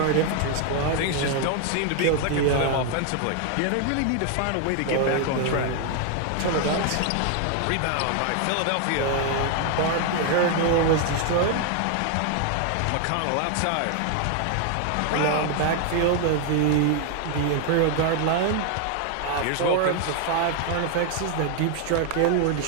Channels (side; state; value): both; different; correlation 0.00